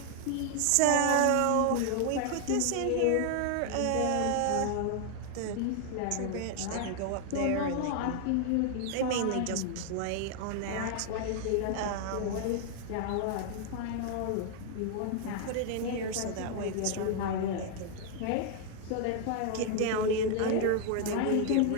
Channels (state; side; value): different; both; correlation 0.00